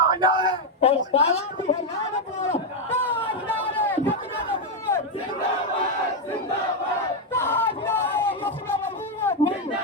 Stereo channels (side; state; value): both; normal; correlation 0.03